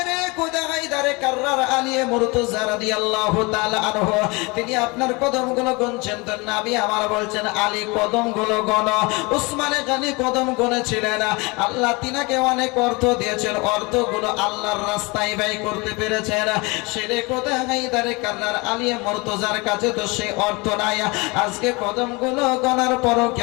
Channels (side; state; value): right; quieter; 26.5 dB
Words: খোদা হায়দারে কাররার আলিয়ে মুর্তজা রাদিয়াল্লাহু তাআলা আনহু তিনি আপনার কদমগুলো গুনছেন, তো নবী আমার বলছেন আলী কদমগুলো গণো। উসমানে গানি কদম গুনেছিলেন, আল্লাহ তিনাকে অনেক অর্থ দিয়েছেন, অর্থগুলো আল্লাহর রাস্তায় ব্যয় করতে পেরেছেন। শেরে খোদা হায়দারে কাররার আলিয়ে মুর্তজার কাছে তো সেই অর্থ নাই। আজকে কদমগুলো গণার পরও